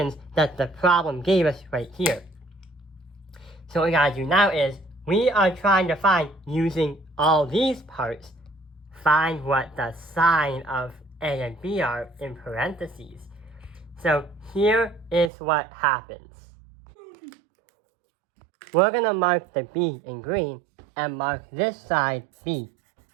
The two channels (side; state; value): left; drops out; at 15.3 s